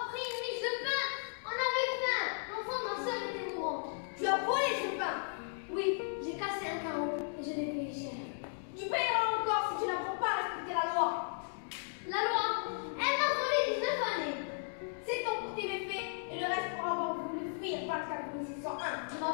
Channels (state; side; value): silent; right; digital silence